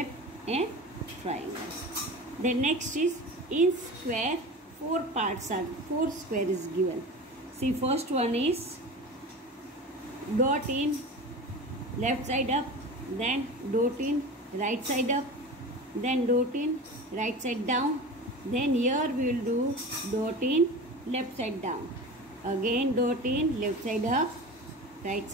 and triangle. Then next is in square 4 parts are, 4 square is given. See first one is dot in left side up, then dot in right side up, then dot in right side down, then here we will do dot in left side down, again dot in left side up, right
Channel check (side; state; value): both; normal; correlation 0.32